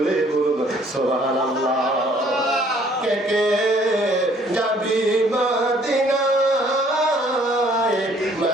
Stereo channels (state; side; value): normal; both; correlation 0.60